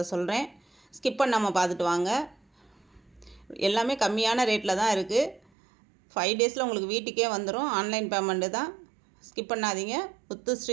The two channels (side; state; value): left; drops out; at 5.4 s